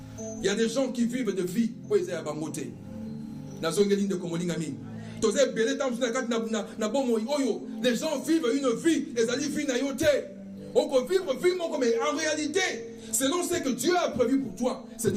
Il y a des gens qui vivent de vie pour les abangote. Na zongeline de komolingami. Les gens vivent une vie, les alliés vivent une yote. On peut vivre mais en réalité, selon ce que Dieu a prévu pour toi, ce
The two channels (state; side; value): identical; both; correlation 1.00